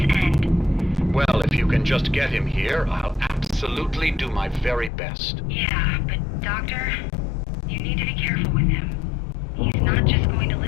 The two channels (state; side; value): drops out; right; at 4.9 s